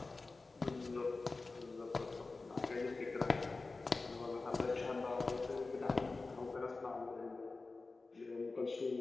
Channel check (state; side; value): quieter; right; 3.7 dB